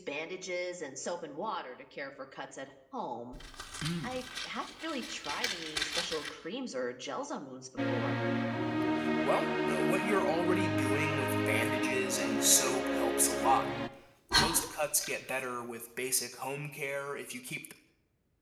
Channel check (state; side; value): identical; both; correlation 1.00